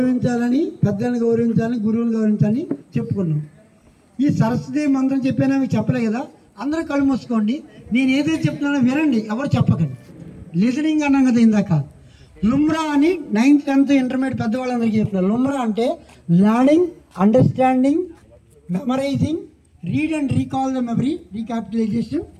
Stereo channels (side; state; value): both; identical; correlation 1.00